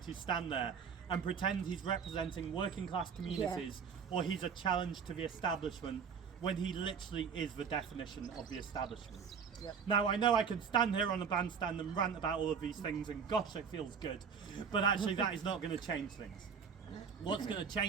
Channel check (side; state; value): left; quieter; 6.5 dB